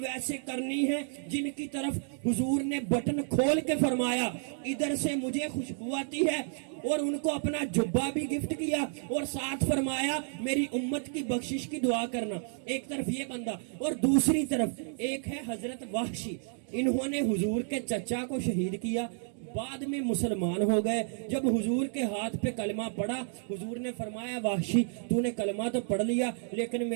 ویسے کرنی ہے جن کی طرف حضور نے بٹن کھول کے فرمایا ادھر سے مجھے خوشبو آتی ہے، اور ان کو اپنا جبہ بھی گفٹ کیا اور ساتھ فرمایا میری امت کی بخشش کی دعا کرنا۔ ایک طرف یہ بندہ اور دوسری طرف ایک ہے حضرت وحشی، انہوں نے حضور کے چچا کو شہید کیا، بعد میں مسلمان ہو گئے۔ جب حضور کے ہاتھ پہ کلمہ پڑا حضور نے فرمایا وحشی تو نے کلمہ تو پڑھ لیا لیکن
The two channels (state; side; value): silent; left; 57 dB below the other